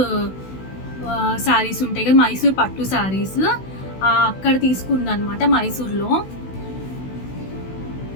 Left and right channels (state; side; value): late; right; 16 ms